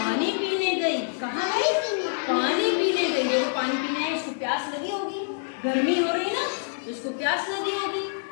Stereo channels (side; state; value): right; silent; digital silence